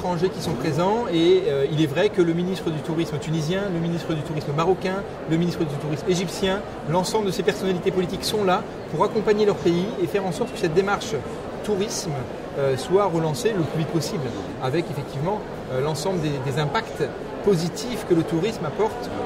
qui sont présents et il est vrai que le ministre du tourisme tunisien, le ministre du tourisme marocain, le ministre du tourisme égyptien, l'ensemble de ces personnalités politiques sont là pour accompagner leur pays et faire en sorte que cette démarche tourisme soit relancé le plus vite possible, avec effectivement l'ensemble des impacts positifs que le tourisme apporte.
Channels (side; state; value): both; identical; correlation 1.00